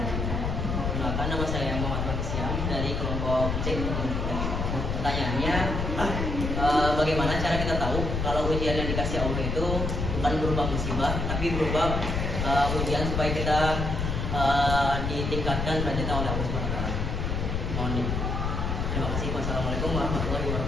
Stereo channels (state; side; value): noise; left; rumble, 1 dB below the sound